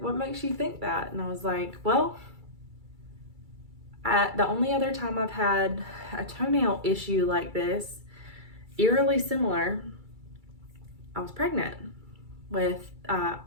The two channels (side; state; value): left; late; 2.3 ms